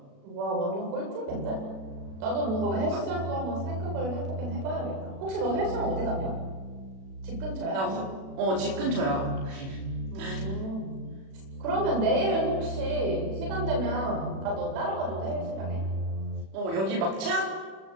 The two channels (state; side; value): late; left; 37 ms